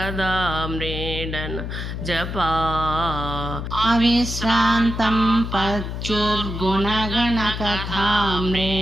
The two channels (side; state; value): left; noise; hum, 5 dB below the sound